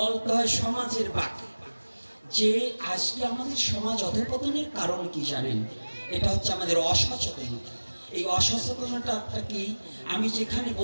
হয় সমাজের বাকি, যে আজকে আমাদের সমাজ অধঃপতনের কারণ কি জানেন? এটা হচ্ছে আমাদের অসচেতনতা। এই অসচেতনতাটা কি, আমি যেখানে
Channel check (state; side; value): inverted; both; correlation -1.00